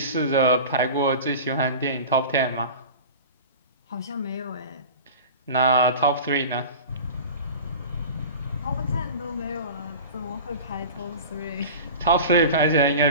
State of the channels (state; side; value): inverted; both; correlation -0.35